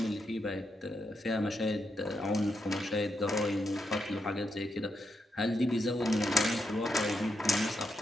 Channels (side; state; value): both; normal; correlation 0.83